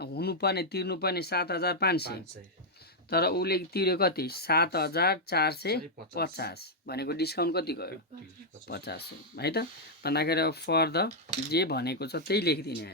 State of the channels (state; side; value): normal; both; correlation -0.04